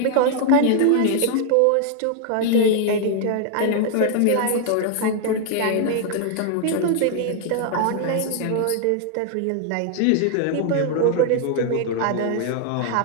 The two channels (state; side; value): different; both; correlation 0.00